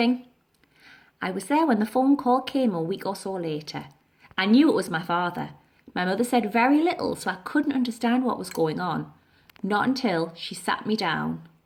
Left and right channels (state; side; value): identical; both; correlation 1.00